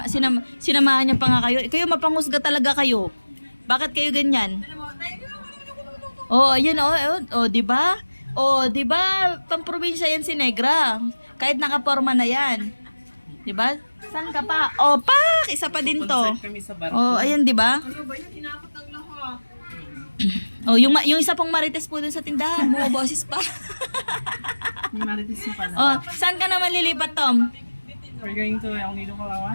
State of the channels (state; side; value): inverted; both; correlation -1.00